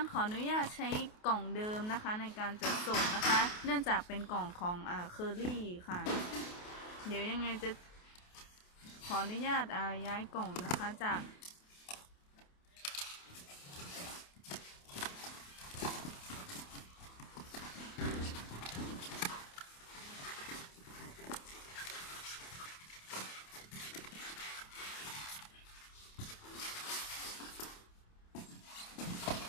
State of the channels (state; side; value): late; right; 28 ms